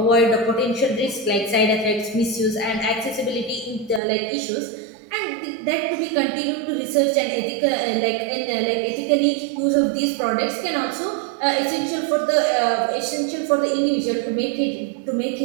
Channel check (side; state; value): left; drops out; at 4.0 s